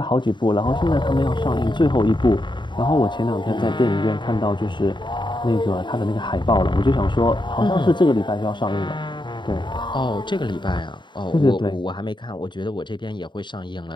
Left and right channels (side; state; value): right; late; 0.23 ms